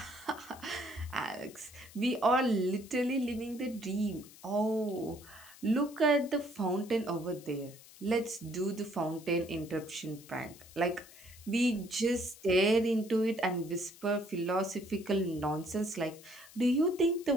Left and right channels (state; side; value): noise; left; hiss, 20 dB below the sound